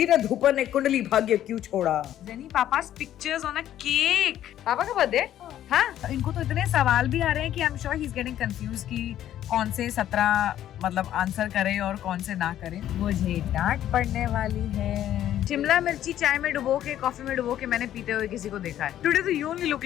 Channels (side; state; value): right; quieter; 11.8 dB